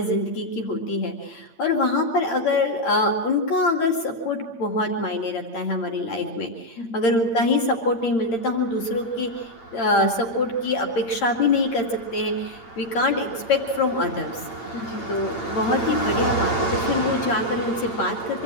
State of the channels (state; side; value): late; right; 8.7 ms